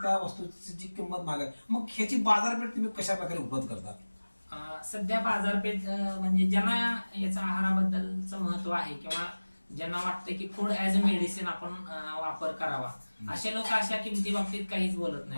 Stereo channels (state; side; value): inverted; both; correlation -1.00